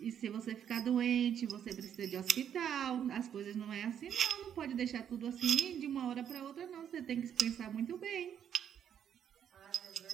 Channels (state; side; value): quieter; left; 9.0 dB